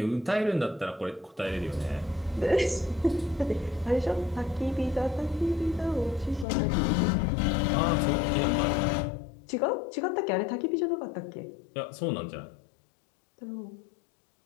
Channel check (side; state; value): right; drops out; at 6.5 s